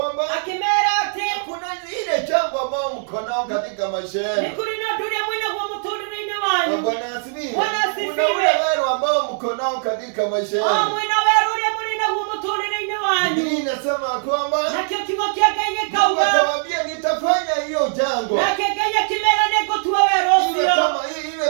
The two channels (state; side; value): silent; left; digital silence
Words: akĩmera atĩ kuna ile jambo ambao mko nao katika maisha nĩ yenu. kũrĩ na ũndũ ũrĩa mwĩnaguo mũtũũrĩre-inĩ wanyu Bwana asifiwe. Bwana asifiwe. Kuna ule wero ambao mko nao katika maisha o yenu. mwĩna werũ ũrĩa mũrĩ naguo mũtũũrĩre-inĩ wanyu Biblia inasema kwamba nakĩo kiugo kĩa Ngai Mungu gĩkauga akawaambia nitafanya hiyo jambo nake Ngai akĩmera nĩngũtua werũ iwe